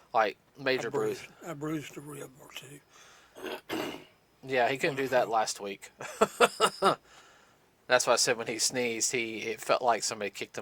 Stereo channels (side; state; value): both; identical; correlation 1.00